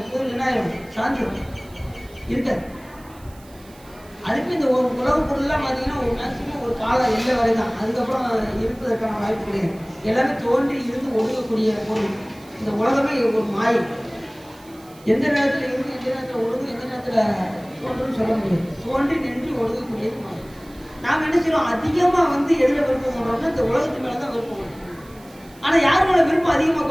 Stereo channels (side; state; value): right; noise; hiss, 25 dB below the sound